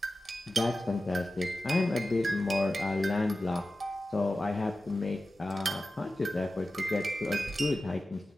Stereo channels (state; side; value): normal; both; correlation 0.94